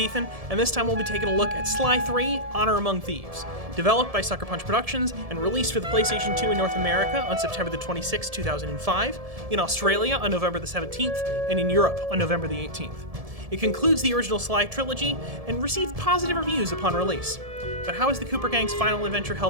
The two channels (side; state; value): left; late; 1.7 ms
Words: and this time we'll be taking a look at Sly 3: Honor Among Thieves. Developed by Sucker Punch Productions and released for the PlayStation 2 in North America on September the 26th, 2005, in Australia on November the 17th, and in Europe on November the 18th. It concludes the original Sly trilogy and received positive reviews upon release. But how has the Cooper Gang's final adventure